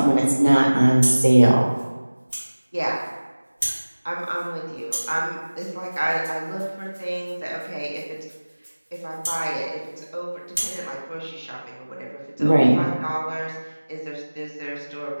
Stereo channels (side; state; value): both; inverted; correlation -1.00